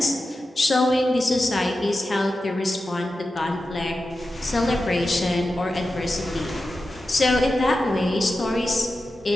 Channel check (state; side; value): normal; both; correlation 0.92